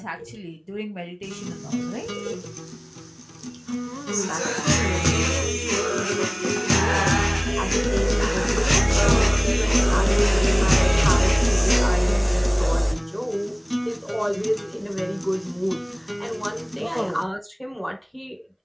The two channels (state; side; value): identical; both; correlation 1.00